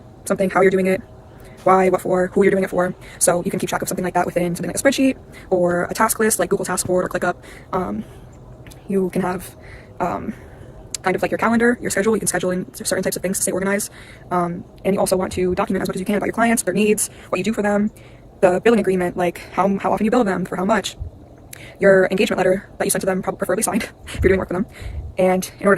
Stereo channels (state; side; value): identical; both; correlation 1.00